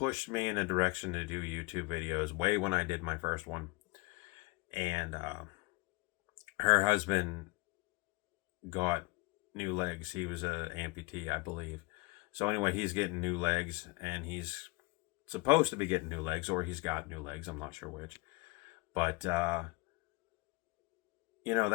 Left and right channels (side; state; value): right; quieter; 25.7 dB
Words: me in a direction to do YouTube videos way when I did my first one. And her husband got new legs. He was a amputee, I believe. So anyway, he's getting new legs, and he's supposed to be getting new legs, or he's got new legs. I'm not sure which. But,